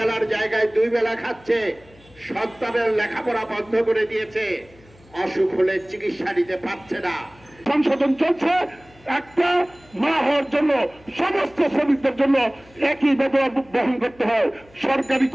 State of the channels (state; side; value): noise; left; hum, 27 dB below the sound